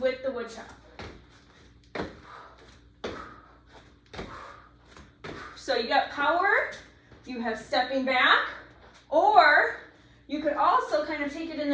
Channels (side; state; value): both; identical; correlation 1.00